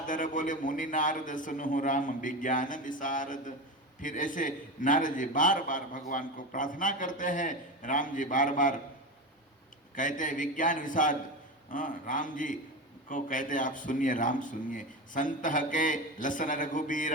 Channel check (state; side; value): normal; both; correlation 0.22